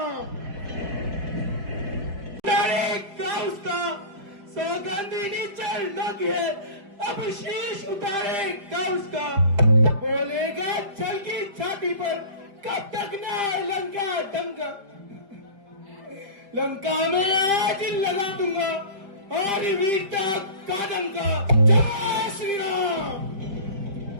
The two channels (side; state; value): left; late; 5.0 ms